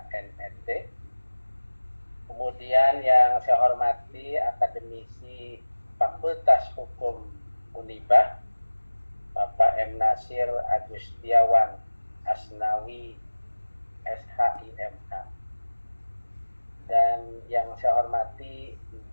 Kemudian yang saya hormati akademisi Fakultas Hukum Unibah, Bapak M. Nasir Agustiawan Asnawi SHIMH. Dan yang saya hormati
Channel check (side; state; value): both; inverted; correlation -1.00